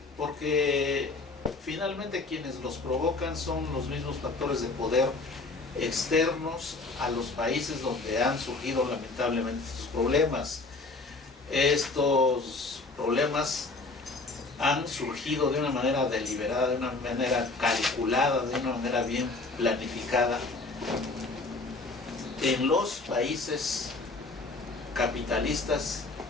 porque finalmente quienes los provocan son los mismos factores de poder externos a los países donde han surgido lamentablemente estos problemas. Estos problemas han surgido de una manera deliberada, de una manera calculada, de una manera bien planificada en los países capitalistas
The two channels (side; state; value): right; quieter; 3.6 dB